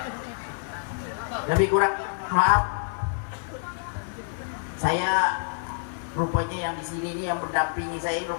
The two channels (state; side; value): silent; right; digital silence